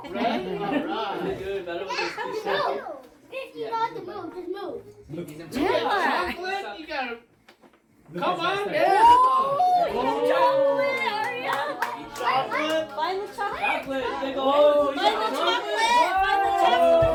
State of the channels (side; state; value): both; identical; correlation 1.00